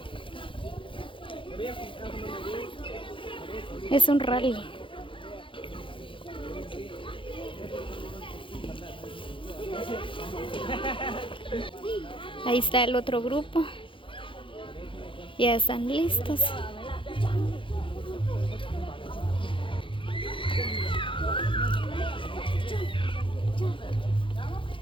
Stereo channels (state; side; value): late; right; 0.25 ms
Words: Es un rally. Ahí está el otro grupo. Ya están listos.